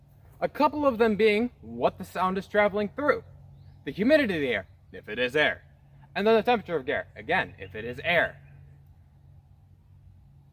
A couple of them being what the sound is traveling through, the humidity of the air, if it is air, and then the temperature of air, again, if it is air.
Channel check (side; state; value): both; identical; correlation 1.00